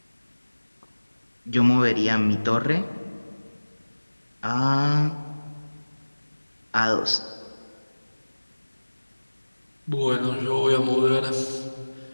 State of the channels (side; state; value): both; inverted; correlation -1.00